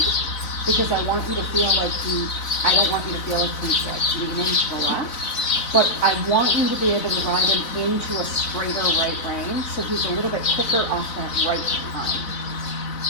because I want you to feel like I don't want you to feel like he's like leaning to the left, but I want you to be able to ride him into a straighter right lane, so he's a little bit quicker off that right behind.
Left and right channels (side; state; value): right; late; 4.0 ms